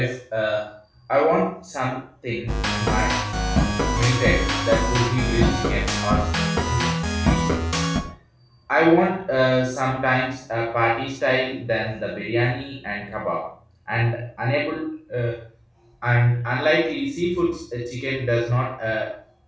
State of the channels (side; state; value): both; identical; correlation 1.00